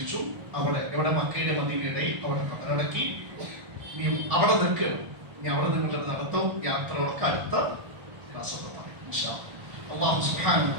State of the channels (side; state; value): left; late; 1.4 ms